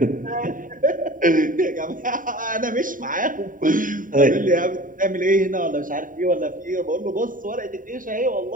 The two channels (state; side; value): late; left; 0.39 ms